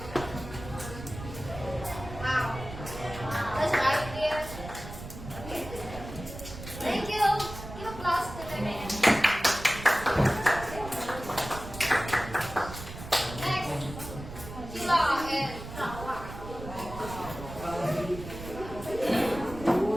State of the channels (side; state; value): right; noise; rumble, 11 dB below the sound